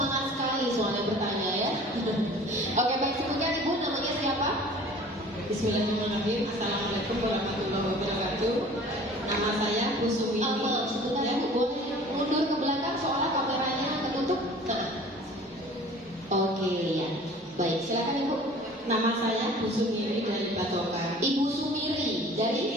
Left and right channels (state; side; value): normal; both; correlation 0.46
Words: sekali soalnya bertanya ya. Oke, baik, sebutkan Ibu namanya siapa? Bismillahirrahmanirrahim. Assalamualaikum warahmatullahi wabarakatuh. Nama saya Bu Suwini. Sebentar ya, boleh mundur ke belakang soalnya kameranya ketutup. Nah. Oke ya. Baik, silakan Ibu. Nama saya Bu Sumiri dari Batokan. Ibu Sumiri